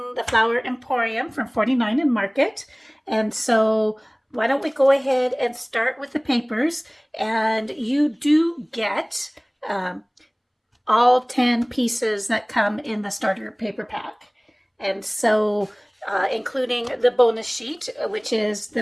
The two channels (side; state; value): both; identical; correlation 1.00